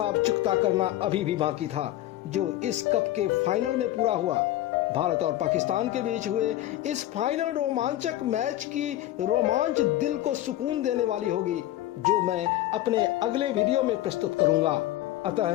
चुकता करना अभी भी बाकी था, जो इस कप के फाइनल में पूरा हुआ। भारत और पाकिस्तान के बीच हुए इस फाइनल रोमांचक मैच की रोमांच दिल को सुकून देने वाली होगी, जो मैं अपने अगले वीडियो में प्रस्तुत करूंगा।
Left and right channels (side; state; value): right; quieter; 14.4 dB